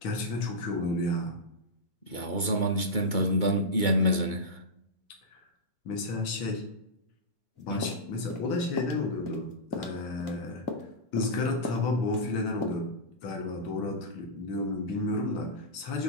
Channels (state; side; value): late; right; 2.2 ms